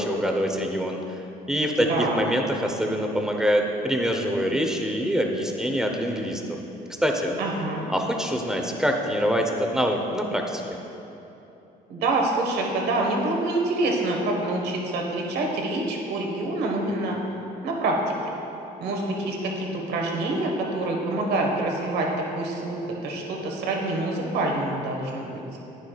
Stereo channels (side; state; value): both; normal; correlation 0.56